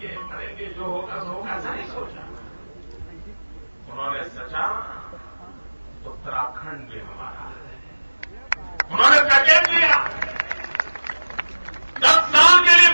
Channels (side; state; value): both; inverted; correlation -1.00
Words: करेंगे जो होगा सो होगा, ऐसा नहीं सोचा। उन्होंने सोचा उत्तराखंड भी हमारा है। उन्होंने पैकेज दिया, 10 साल के लिए